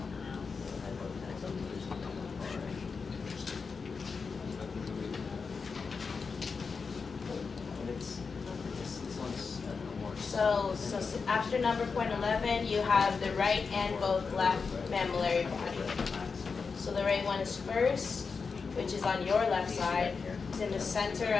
So after number point 11, you have the right and both left mammillary body. So the right one is first, which is on your left side. It's in the center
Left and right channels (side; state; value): right; quieter; 5.1 dB